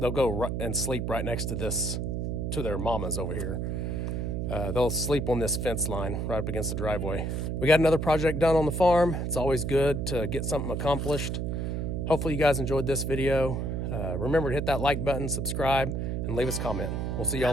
and sleep right next to their mamas over here. They'll sleep on this fence line right up against the driveway. We got another project done on the farm. It's always good to get something accomplished. Hopefully you guys enjoyed this video. Remember to hit that like button, subscribe, and leave us a comment. We'll see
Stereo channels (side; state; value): right; noise; hum, 1 dB below the sound